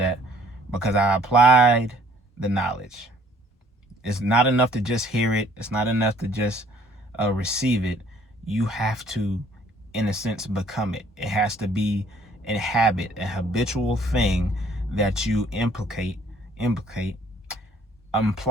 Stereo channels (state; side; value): normal; both; correlation 0.60